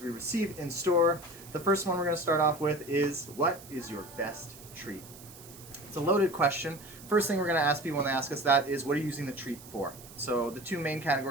we receive in store. The first one we're going to start off with is, what is your best treat? It's a loaded question. First thing we're going to ask people when they ask us that is, what are you using the treat for? So the two main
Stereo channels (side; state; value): right; noise; hiss, 18 dB below the sound